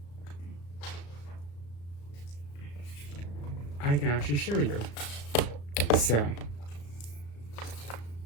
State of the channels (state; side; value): late; right; 35 ms